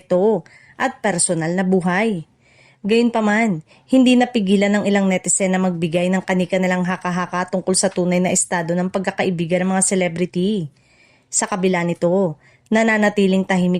at personal na buhay. Gayunpaman, hindi napigilan ng ilang netizen na magbigay ng kanika nilang haka-haka tungkol sa tunay na estado ng pagkakaibigan ng mga celebrity. Sa kabila nito, nananatiling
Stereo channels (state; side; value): identical; both; correlation 1.00